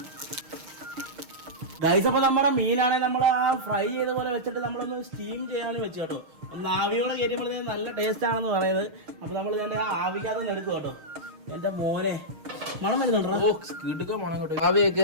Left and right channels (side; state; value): left; late; 6.4 ms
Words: ഗൈസ് അപ്പൊ നമ്മുടെ മീനാണെ നമ്മൾ ആ ഫ്രൈ ചെയ്ത പോലെ വെച്ചിട്ട് നമ്മളൊന്ന് സ്റ്റീം ചെയ്യാൻ വെച്ചു കേട്ടോ. ഒന്ന് ആവിയോടെ കയറ്റുമ്പോഴത്തേക്കും നല്ല ടേസ്റ്റ് ആണെന്ന് പറയുന്നത്. അപ്പൊ നമ്മൾ ഇതിന്റെ ആ ആവിക്കകത്ത് എടുത്തു കേട്ടോ. എന്റെ മോനെ മണം വരുന്നുണ്ടോ? മണം കേട്ടോ. ആവിയൊക്കെ